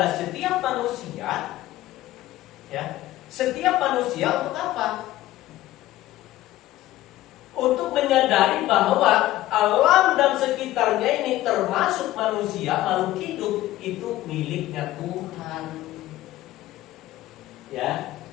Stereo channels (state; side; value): quieter; right; 15.4 dB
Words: setiap manusia Ya, setiap manusia untuk apa? Untuk menyadari bahwa alam dan sekitarnya ini termasuk manusia, makhluk hidup itu miliknya Tuhan. Ya,